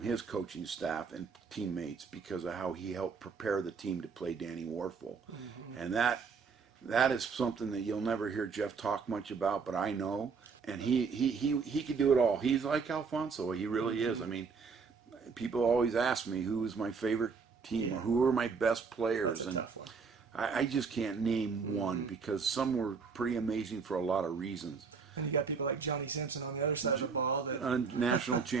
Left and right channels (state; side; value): quieter; left; 5.3 dB